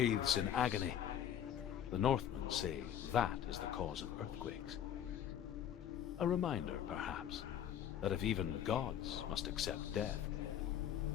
in agony. The Northmen say that is the cause of earthquakes. A reminder, perhaps, that if even gods must accept death,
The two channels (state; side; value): quieter; right; 9.8 dB